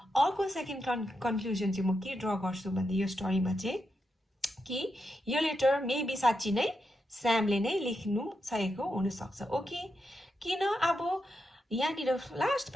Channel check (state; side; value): normal; both; correlation 0.85